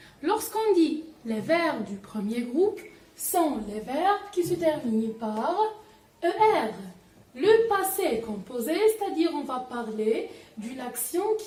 Lorsqu'on dit les verbes du premier groupe, sont les verbes qui se terminent par ER. Le passé composé, c'est-à-dire on va parler d'une action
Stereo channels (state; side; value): identical; both; correlation 1.00